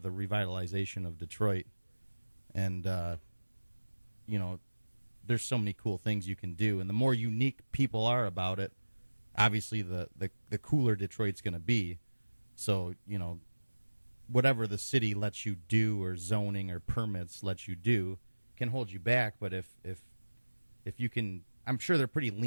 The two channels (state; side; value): inverted; both; correlation -1.00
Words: the revitalization of Detroit. And there's so many cool things you can do, and the more unique people are about it, obviously the cooler Detroit's going to be. So, whatever the city lets you do or zoning or permits lets you do can hold you back, but if you can, I'm sure they're pretty